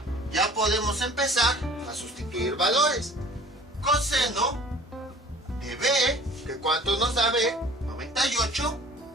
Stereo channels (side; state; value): both; normal; correlation 0.48